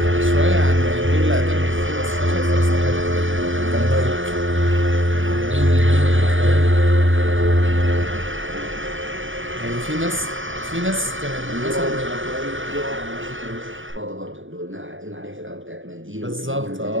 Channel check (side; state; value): left; late; 0.57 ms